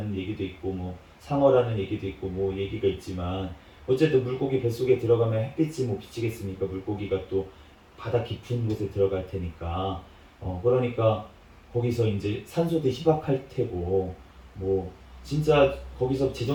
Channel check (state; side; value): identical; both; correlation 1.00